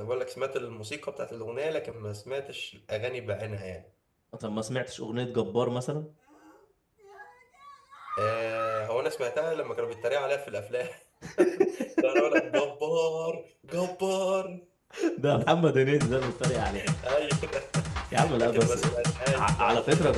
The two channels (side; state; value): both; identical; correlation 1.00